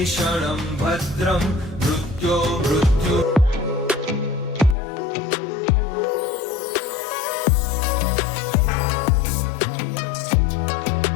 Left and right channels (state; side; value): drops out; right; at 4.8 s